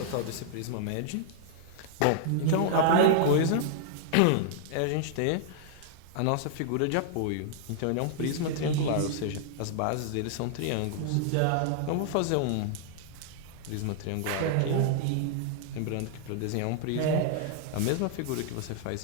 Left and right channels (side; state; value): both; different; correlation -0.01